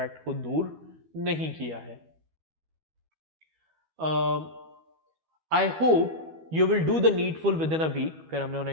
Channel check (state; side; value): late; left; 12 ms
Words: को दूर नहीं किया है। I hope you will do the needful within a week. फिर हमने